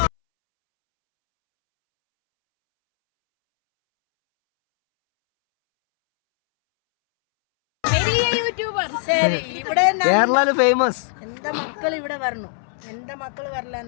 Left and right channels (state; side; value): silent; right; 65 dB below the other